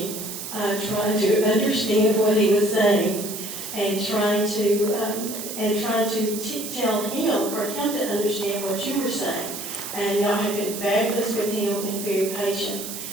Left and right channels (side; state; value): right; noise; hiss, 8 dB below the sound